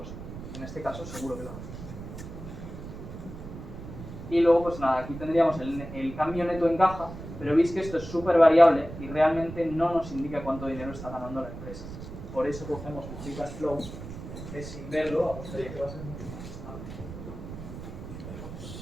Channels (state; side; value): noise; right; rumble, 11 dB below the sound